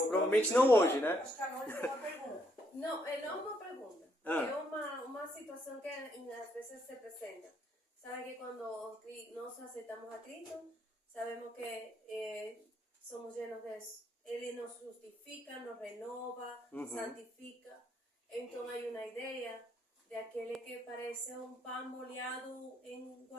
não hoje, né? Acho que a Carol tem uma pergunta. Não, não uma pergunta. Ah. É uma situação que às vezes se apresenta. Sabe que quando nós aceitamos a Cristo, sabemos que somos llenos de eso. Ele nos justifica, nos renova, santifica. Então há uma ideia de aquele que parece um pão molhado em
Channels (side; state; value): both; normal; correlation 0.73